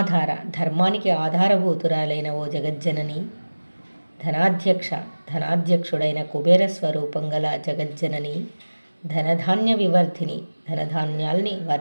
ధర్మానికి ఆధారభూతురాలైన ఓ జగజ్జనని. ధనాధ్యక్ష, ధనాధ్యక్షుడైన కుబేర స్వరూపం గల జగజ్జనని. ధనధాన్య వివర్ధిని, ధనధాన్యాల్ని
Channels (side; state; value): both; inverted; correlation -1.00